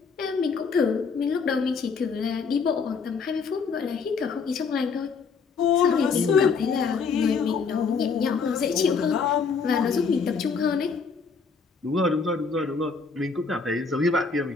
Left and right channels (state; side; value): quieter; right; 5.2 dB